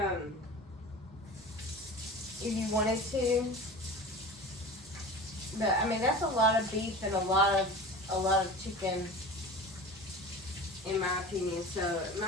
you wanted to. But I mean, that's a lot of beef and a lot of chicken, in my opinion. So it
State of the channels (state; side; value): normal; both; correlation 0.35